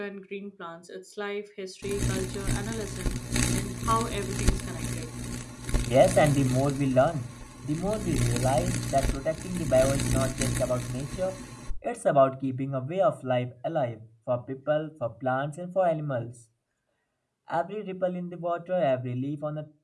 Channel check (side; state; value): both; identical; correlation 1.00